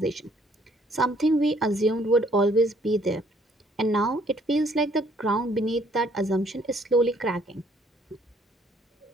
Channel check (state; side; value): normal; both; correlation 0.64